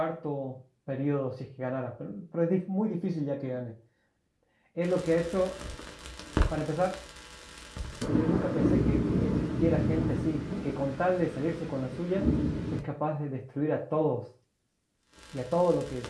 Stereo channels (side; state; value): both; identical; correlation 1.00